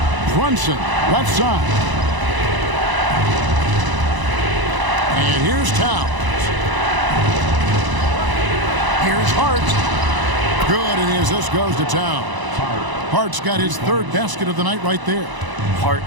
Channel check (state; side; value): late; left; 1.0 ms